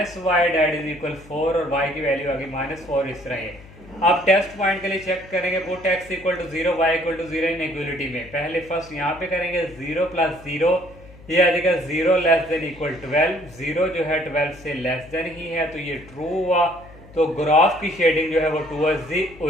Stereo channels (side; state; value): left; noise; hum, 21 dB below the sound